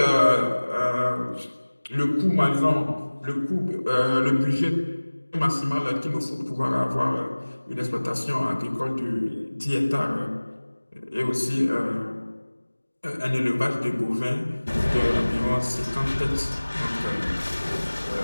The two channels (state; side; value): inverted; both; correlation -1.00